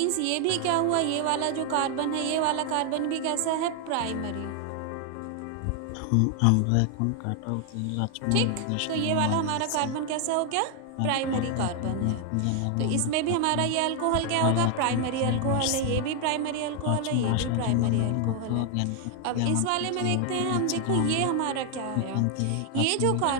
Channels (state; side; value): different; both; correlation 0.00